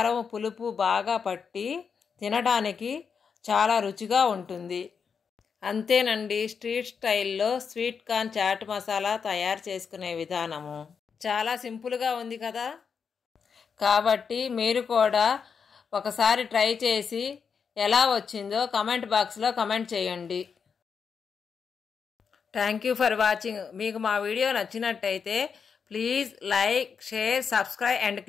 పులుపు బాగా పట్టి తినడానికి చాలా రుచిగా ఉంటుంది. అంతేనండి, స్ట్రీట్ స్టైల్లో స్వీట్ కార్న్ చాట్ మసాలా తయారు చేసుకునే విధానము చాలా సింపుల్గా ఉంది కదా. కాబట్టి మీరు కూడా ఒకసారి ట్రై చేసి ఎలా వచ్చిందో కమెంట్ బాక్స్లో కమెంట్ చేయండి. Thank you for watching. మీకు మా వీడియో నచ్చినట్టయితే please like, share, subscribe and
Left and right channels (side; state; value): right; quieter; 6.2 dB